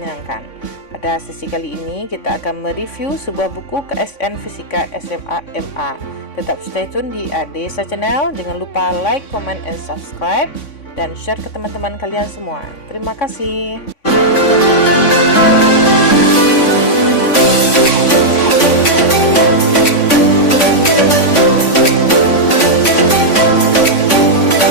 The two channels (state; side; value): late; right; 3.5 ms